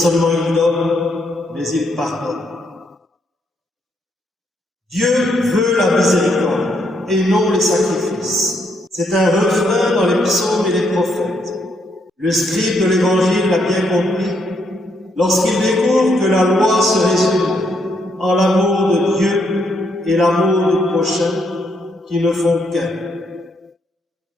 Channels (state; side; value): normal; both; correlation 0.75